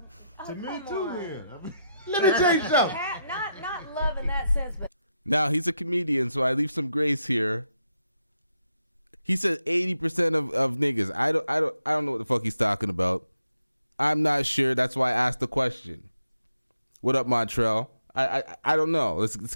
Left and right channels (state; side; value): inverted; both; correlation -0.82